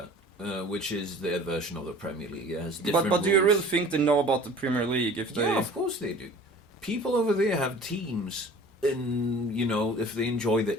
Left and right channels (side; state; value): both; normal; correlation 0.45